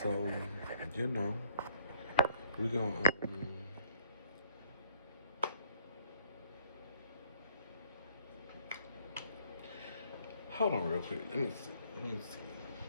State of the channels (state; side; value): inverted; both; correlation -0.61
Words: So, you know, we gonna hold on real quick. Let me see. Let me see.